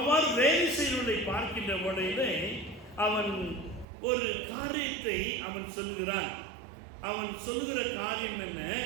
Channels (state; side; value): drops out; left; at 3.9 s